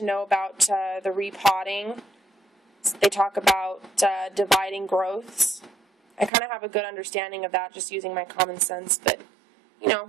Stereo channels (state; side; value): drops out; left; at 6.3 s